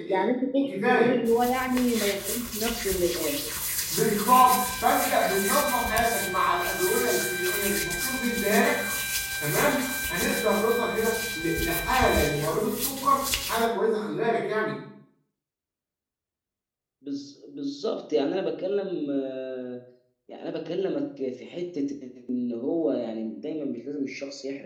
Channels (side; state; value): both; identical; correlation 1.00